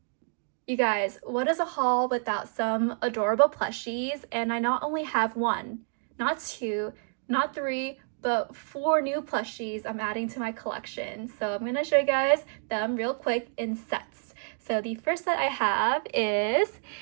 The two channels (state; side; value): silent; left; 59 dB below the other